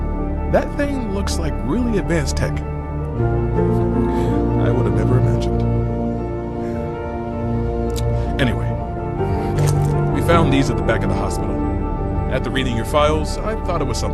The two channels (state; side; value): identical; both; correlation 1.00